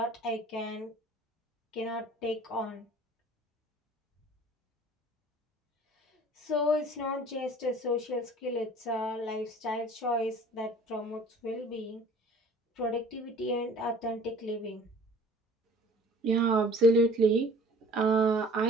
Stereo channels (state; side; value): normal; both; correlation 0.48